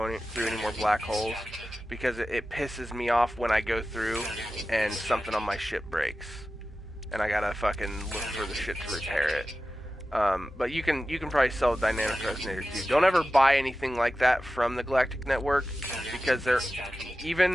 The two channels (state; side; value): normal; both; correlation 0.94